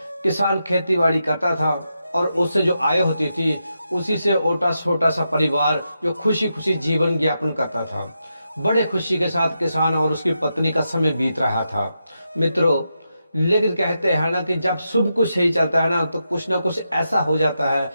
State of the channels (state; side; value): inverted; both; correlation -0.86